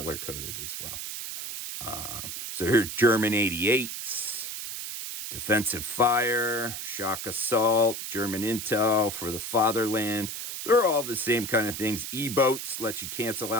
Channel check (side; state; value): right; noise; hiss, 6 dB below the sound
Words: as well. So here's German 88s, defensive fire, shock assault, German intel for the fatherland. They're all the same kind of things. E-boats let you cancel